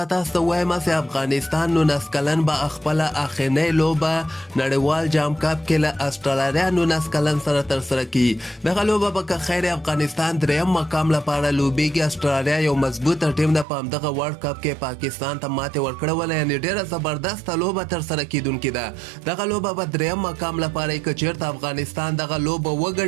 تاسو ته وایم چې افغانستان 19 کلن به خپله اخرنۍ لوبه نړیوال جام کپ کې له استرالیا 19 کلن سره ترسره کړي. دغه لوبه به که خیر افغانستان دریم مقام لپاره لوبیږي. استرالیا یو مضبوطه ټیم ده، په همدغه ورلډ کپ کې پاکستان ته ماتې ورکړې وله، یعنې ډېره زبردسته لوبه ترسره کیدونکې ده. دغه لوبه به دریم مقام لپاره که چېرته افغانستان دغه لوبه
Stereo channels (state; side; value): drops out; left; at 13.7 s